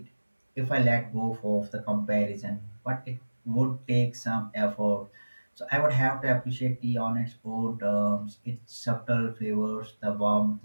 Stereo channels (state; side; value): inverted; both; correlation -1.00